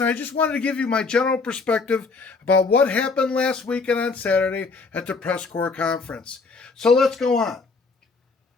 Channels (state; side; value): quieter; right; 4.3 dB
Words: and I just wanted to give you my general perspective about what happened last weekend on Saturday at the press corps conference. So let's go on.